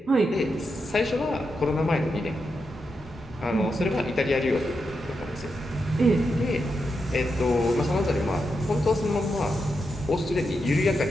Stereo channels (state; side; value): normal; both; correlation 0.86